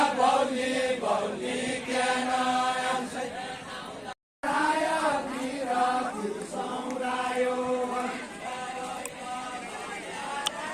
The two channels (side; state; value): both; identical; correlation 1.00